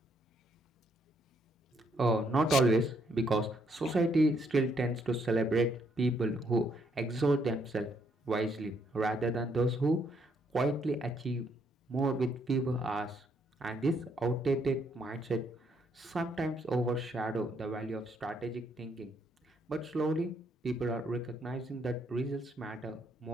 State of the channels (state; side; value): normal; both; correlation 0.72